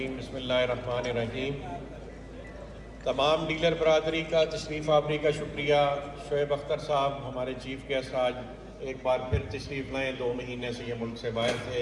بسم اللہ الرحمن الرحیم۔ تمام ڈیلر برادری کا تشریف آوری کا شکریہ۔ شعیب اختر صاحب ہمارے چیف گیسٹ آج ایک بار پھر تشریف لائیں، 2 مہینے سے یہ ملک سے باہر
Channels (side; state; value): both; identical; correlation 1.00